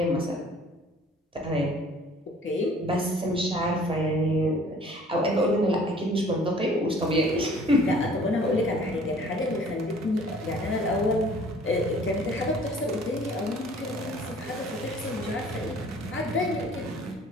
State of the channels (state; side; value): normal; both; correlation 0.53